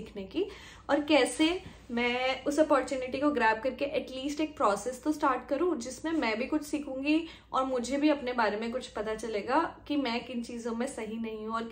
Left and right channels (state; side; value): identical; both; correlation 1.00